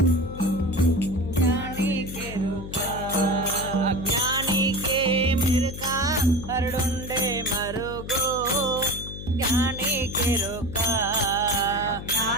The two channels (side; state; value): left; noise; hum, 10 dB below the sound